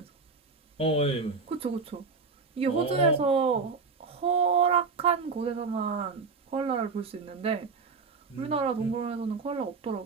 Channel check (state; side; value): quieter; left; 4.6 dB